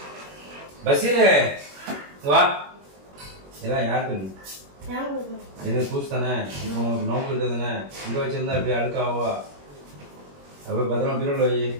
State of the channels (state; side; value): late; left; 21 ms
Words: பசீரே வா. இதெல்லாம் யாருக்கு இது? பூசு தானே, நோக்கிட்டு தானே. இங்கே வச்சிருந்தா இப்படி அழுக்காவா? அப்போ பத்திரமா பீரோல வை.